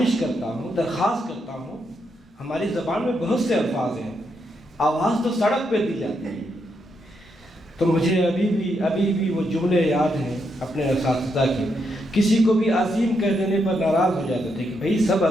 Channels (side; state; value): both; normal; correlation 0.80